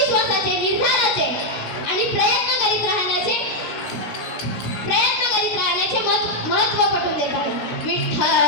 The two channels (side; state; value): right; late; 16 ms